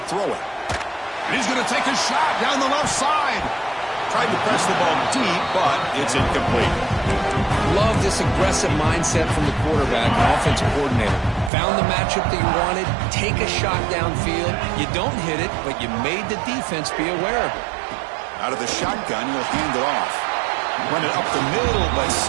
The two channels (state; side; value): drops out; left; at 11.5 s